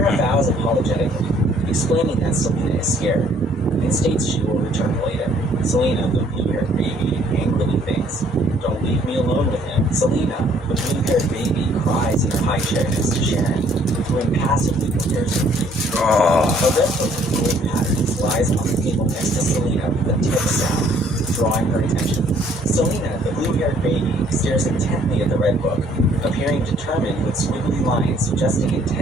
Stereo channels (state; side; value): normal; both; correlation 0.62